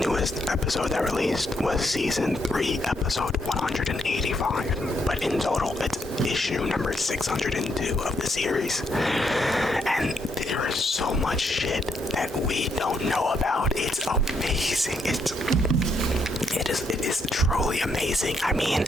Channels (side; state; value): both; normal; correlation 0.76